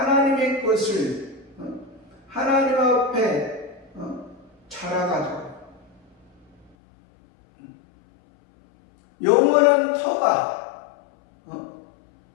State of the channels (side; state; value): right; drops out; at 6.7 s